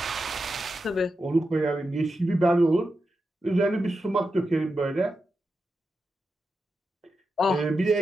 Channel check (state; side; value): normal; both; correlation 0.89